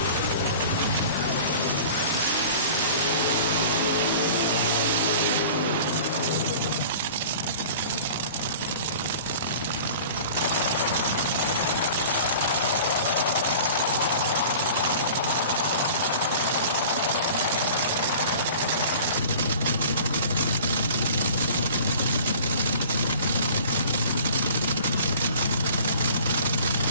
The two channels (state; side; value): inverted; both; correlation -0.43